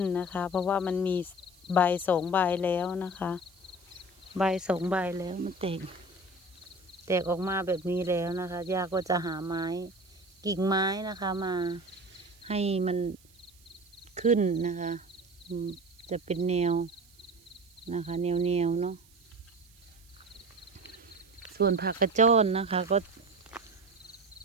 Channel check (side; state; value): right; noise; hiss, 28 dB below the sound